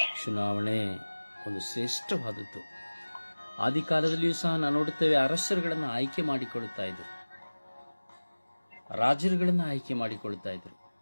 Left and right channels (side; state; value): both; inverted; correlation -1.00